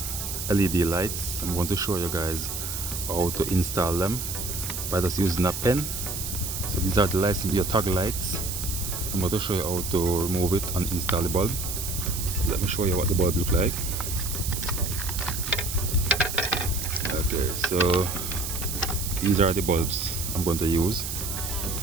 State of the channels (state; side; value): noise; right; hiss, 5 dB below the sound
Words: LED lights. I'm going to show you guys how to install them by just using a pen. So these are the lights, your toggle lights. I'm going to show you how to remove it and install the bulb. Let me show you what the bulb look like. Okay, so these are the bulbs I'm going to use.